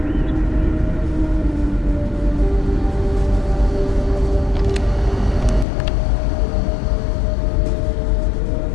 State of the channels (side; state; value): right; drops out; at 5.7 s